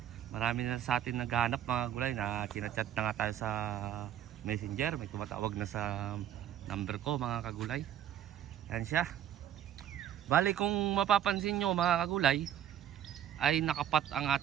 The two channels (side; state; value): left; quieter; 10.6 dB